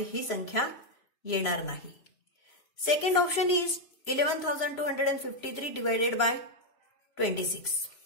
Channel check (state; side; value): late; right; 3.0 ms